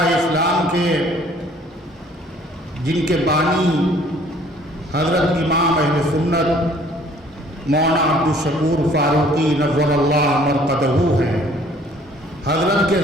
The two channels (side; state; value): both; normal; correlation 0.56